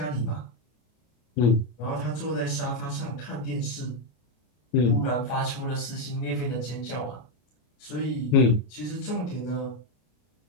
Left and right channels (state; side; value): late; right; 33 ms